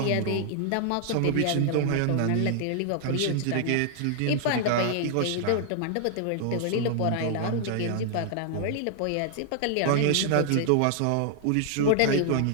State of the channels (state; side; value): different; both; correlation 0.00